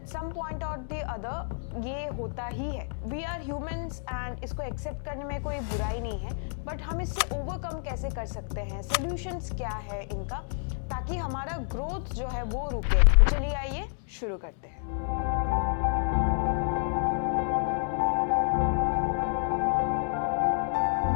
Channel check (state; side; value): silent; right; digital silence